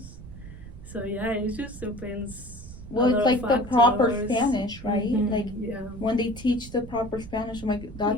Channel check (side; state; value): right; noise; rumble, 14 dB below the sound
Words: so it just depends. Well, it's like the proper Spanish, right? Like when they teach the proper Spanish, I'm like,